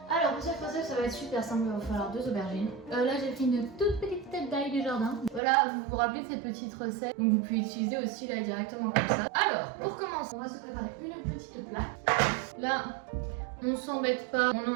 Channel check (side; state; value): left; drops out; at 5.4 s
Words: Alors pour cette recette ça va être super simple, il va falloir 2 aubergines. Là j'ai fait une toute petite tête d'ail du jardin. Voilà, vous vous rappelez de cette petite recette, donc vous pouvez utiliser aussi là directement comme ça. Alors pour commencer, on va se préparer une petite plaque. Là on s'embête pas,